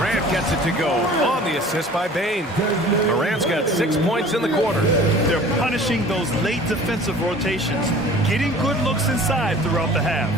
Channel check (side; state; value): both; normal; correlation 0.46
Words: gets it to go on the assist by Bain. Morant's got 6 points in the quarter. They're punishing those late defensive rotations, getting good looks inside throughout the half.